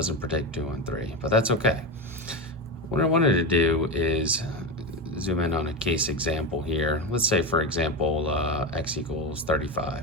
predict 2 and 3, but that's okay. What I wanted to do is zoom in on a case example here. Let's say, for example, x equals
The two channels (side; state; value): both; normal; correlation 0.16